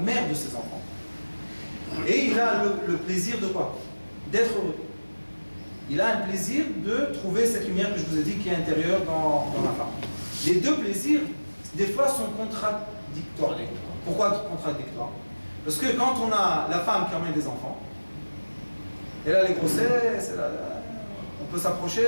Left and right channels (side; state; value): both; inverted; correlation -1.00